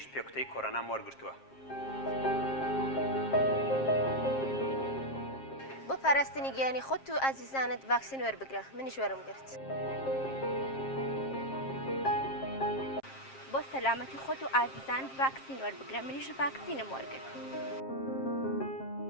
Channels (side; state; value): right; late; 7.5 ms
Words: پێکوتەی کۆڕۆنام وەرگرتووە. بۆ پاراستنی گیانی خۆت و ئازیزانت ڤاکسین وەربگرە. منیش وەرم گرت. بۆ سەلامەتی خۆت و ئازیزانت ڤاکسین وەربگرە. منیش ڤاکسینم وەرگرت.